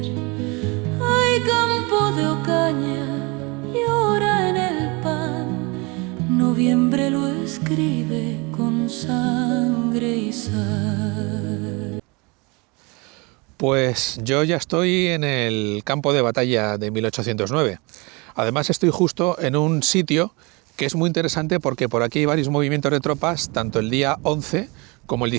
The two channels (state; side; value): quieter; left; 27.8 dB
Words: Ay, campo de Ocaña, llora en el pan, noviembre lo escribe con sangre y sal. Pues yo ya estoy en el campo de batalla de 1809. Además estoy justo en un sitio que es muy interesante porque por aquí hay varios movimientos de tropas, tanto el día 11 como el